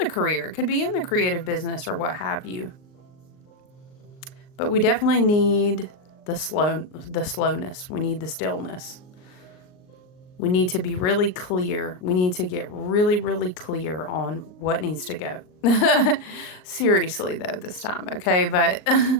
career. It could be in the creative business or what have you. But we definitely need the slowness. We need the stillness. We need to be really clear. We need to get really, really clear on what needs to go. Seriously, though, this time, okay? But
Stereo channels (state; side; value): late; right; 39 ms